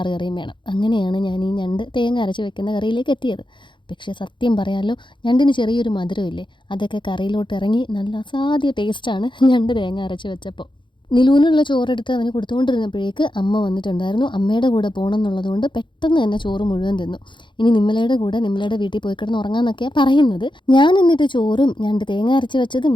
കറിയും വേണം. അങ്ങനെയാണ് ഞാൻ ഈ ഞണ്ട് തേങ്ങ അരച്ച് വെക്കുന്ന കറിയിലേക്ക് എത്തിയത്. പക്ഷേ സത്യം പറയാമല്ലോ, ഞണ്ടിന് ചെറിയൊരു മധുരമില്ലേ, അതൊക്കെ കറിയിലോട്ട് ഇറങ്ങി നല്ല അസാധ്യ ടേസ്റ്റാണ് ഞണ്ട് തേങ്ങ അരച്ച് വെച്ചപ്പോൾ. നിലൂനുള്ള ചോറെടുത്ത് അവന് കൊടുത്തുകൊണ്ടിരുന്നപ്പോഴേക്ക് അമ്മ വന്നിട്ടുണ്ടായിരുന്നു. അമ്മയുടെ കൂടെ പോകണം എന്നുള്ളതുകൊണ്ട് പെട്ടെന്ന് തന്നെ ചോറ് മുഴുവൻ തിന്നു. ഇനി നിമ്മലയുടെ കൂടെ നിമ്മലയുടെ വീട്ടിൽ പോയി കിടന്ന് ഉറങ്ങാമെന്നൊക്കെയാണ് പറയുന്നത്. ഞാൻ എന്നിട്ട് ചോറും ഞണ്ട് തേങ്ങ അരച്ച് വെച്ചതും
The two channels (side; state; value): right; late; 0.23 ms